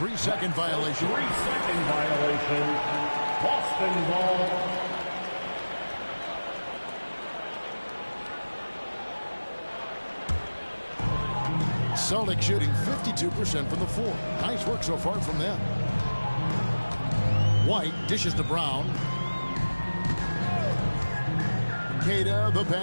violation. 3-second violation. Boston ball. Celtics shooting 52% from the floor. Nice work so far from them. White dishes to Brown. Queta, the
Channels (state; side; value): inverted; both; correlation -1.00